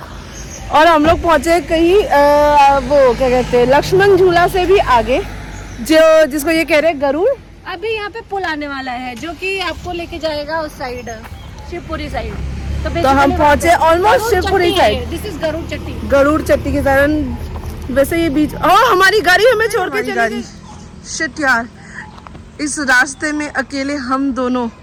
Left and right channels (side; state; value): both; identical; correlation 1.00